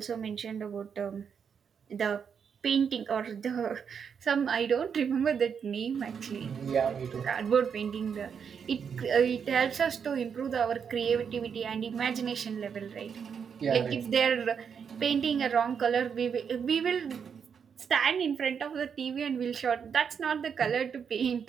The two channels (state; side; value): quieter; left; 6.9 dB